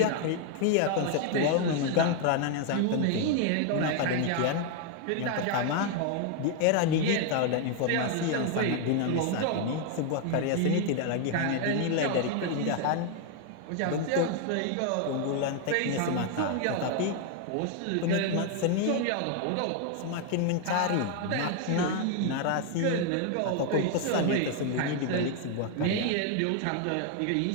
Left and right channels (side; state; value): both; different; correlation 0.00